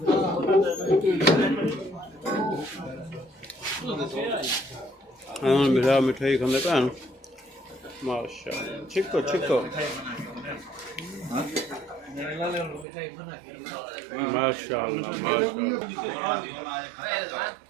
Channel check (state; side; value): drops out; left; at 12.9 s